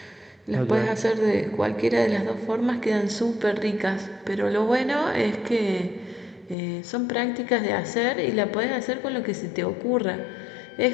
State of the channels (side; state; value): right; drops out; at 6.6 s